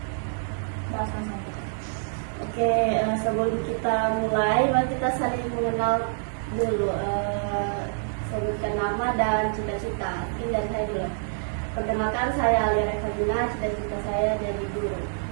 Oke, sebelum kita mulai, mari kita saling mengenal dulu. Sebutkan nama dan cita-cita. Mungkin dari saya dulu. Perkenalkan, saya Alia Revagina, cita-cita saya jadi guru.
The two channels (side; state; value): left; silent; 61 dB below the other